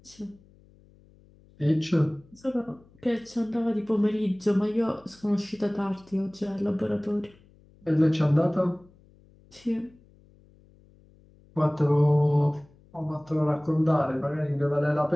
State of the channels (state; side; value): noise; left; hum, 28 dB below the sound